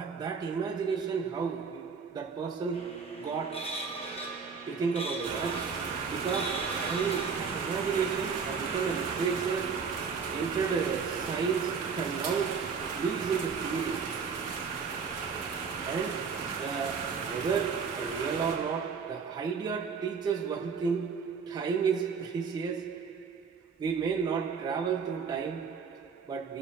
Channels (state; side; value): quieter; left; 5.7 dB